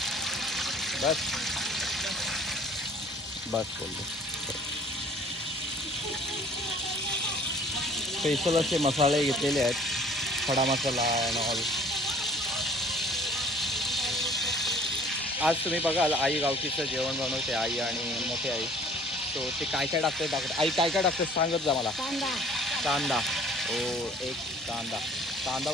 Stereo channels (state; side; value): normal; both; correlation 0.52